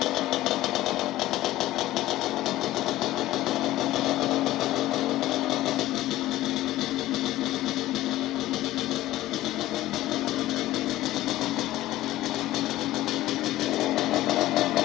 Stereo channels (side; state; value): right; quieter; 15.7 dB